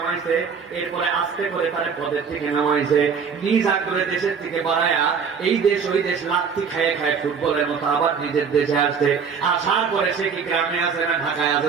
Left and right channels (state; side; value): quieter; left; 6.1 dB